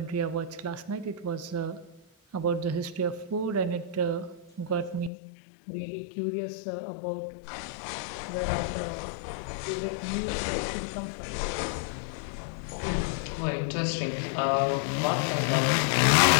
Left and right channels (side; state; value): right; drops out; at 5.1 s